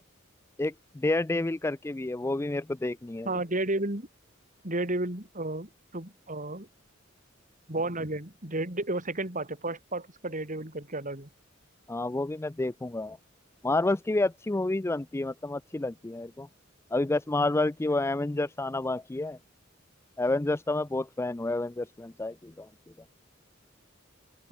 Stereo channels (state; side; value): normal; both; correlation 0.68